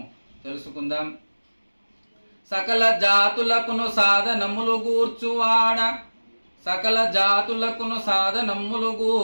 తెలుసుకుందాం. సకల జాతులకును సాధనములు గూర్చువాడ, సకల జాతులకును సాధనమ్ములు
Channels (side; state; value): both; inverted; correlation -1.00